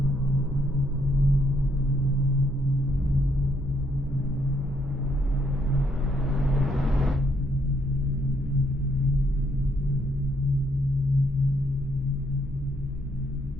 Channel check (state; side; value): normal; both; correlation 0.72